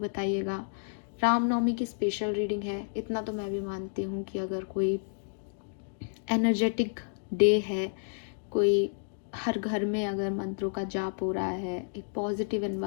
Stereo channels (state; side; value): silent; right; digital silence